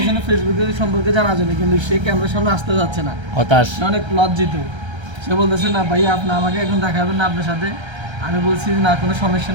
ফেসবুকে সম্পর্কে জানার জন্য, কিন্তু সে ক্যামেরার সামনে আসতে যাচ্ছে না, হতাশ। সে অনেক লজ্জিত। সে বলতেছে না ভাই আপনি আমাকে এখন দেখাবেন না আপনার সাথে। আমি বলছি না কোনো সমস্যা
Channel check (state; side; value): late; left; 1.3 ms